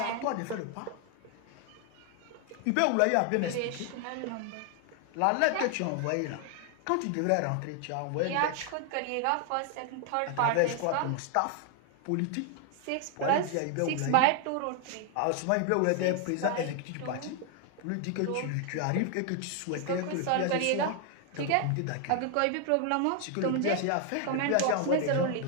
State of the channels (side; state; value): both; different; correlation 0.00